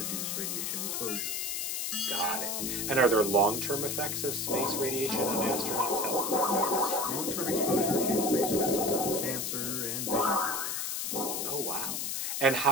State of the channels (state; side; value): noise; left; hiss, 1 dB below the sound